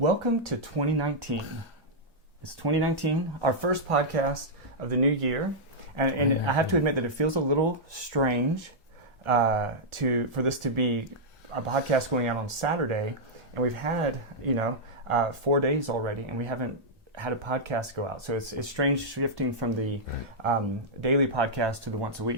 to 2019. It's 2019, our first podcast of the new year, and I have to admit that it feels a little strange for this to be a podcast going out on Saturday, and we've had 4 days already, and we haven't had a podcast go out. So it's strange shifting from the daily podcast to the once a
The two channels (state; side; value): normal; both; correlation -0.08